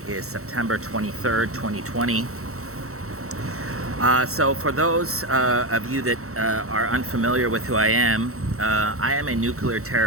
is September 23rd, 2020. So for those of you that are unfamiliar with who I am a nuclear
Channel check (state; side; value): late; left; 0.64 ms